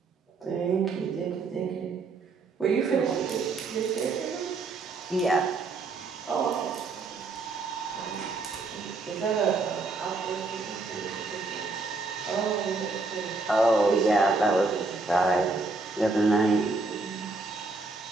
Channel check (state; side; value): quieter; left; 3.7 dB